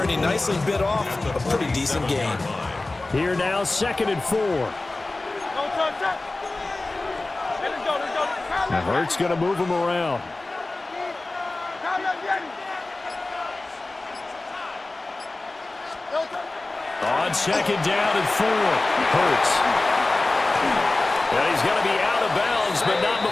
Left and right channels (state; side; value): quieter; right; 3.0 dB